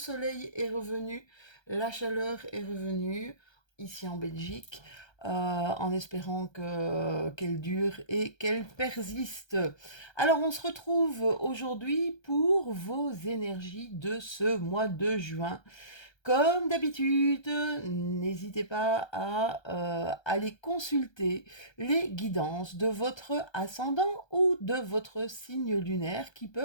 est revenu, la chaleur est revenue ici en Belgique, en espérant qu'elle dure et qu'elle persiste. Alors on se retrouve aujourd'hui pour vos énergies de ce mois de juin. Comme d'habitude, n'hésitez pas à aller consulter les guidances de votre ascendant ou de votre signe lunaire qui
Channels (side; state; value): right; late; 1.3 ms